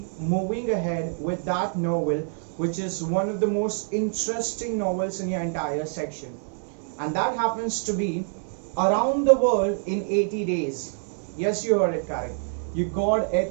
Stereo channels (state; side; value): silent; left; 61 dB below the other